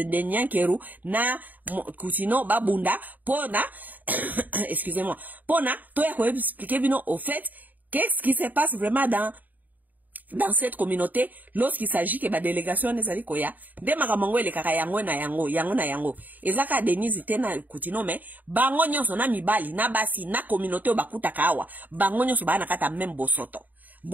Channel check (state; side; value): late; left; 0.083 ms